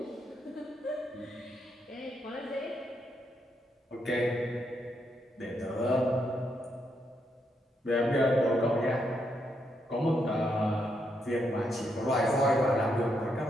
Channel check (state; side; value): normal; both; correlation 0.79